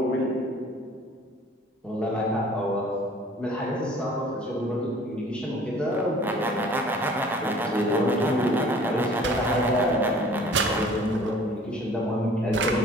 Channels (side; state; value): both; normal; correlation 0.50